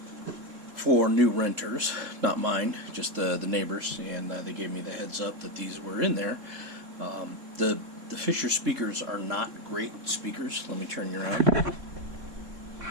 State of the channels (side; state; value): left; late; 3.7 ms